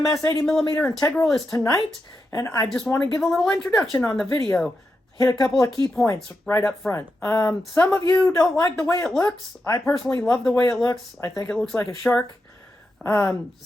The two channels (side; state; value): both; normal; correlation 0.87